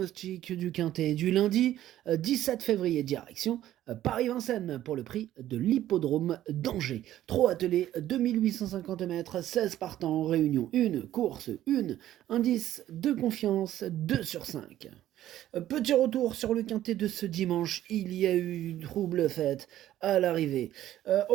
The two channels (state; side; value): quieter; left; 13.0 dB